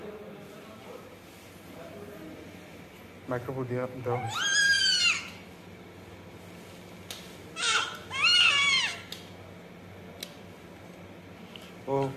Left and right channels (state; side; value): identical; both; correlation 1.00